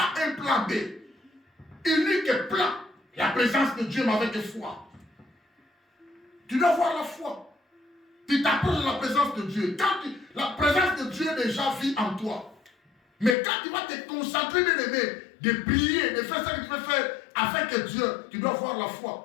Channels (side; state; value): right; drops out; at 13.4 s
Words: un plan B. Unique plan. La présence de Dieu, mais avec foi. Tu dois avoir la foi. Tu t'approches de la présence de Dieu. La présence de Dieu déjà vit en toi. Mais quand tu vas te concentrer, bien aimé, de prier, de faire ce que tu veux faire avec Dieu, tu dois avoir la